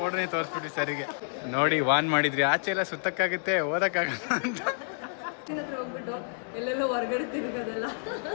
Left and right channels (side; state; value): right; silent; digital silence